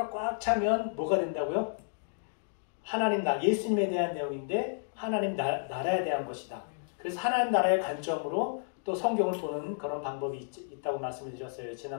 꽉 차면 뭐가 된다고요? 하나님 예수님에 대한 내용인데 하나님 나라에 대한 것이다. 그래서 하나님 나라의 관점으로 또 성경을 보는 그런 방법이 있다고 말씀을 드렸어요.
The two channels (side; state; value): right; silent; digital silence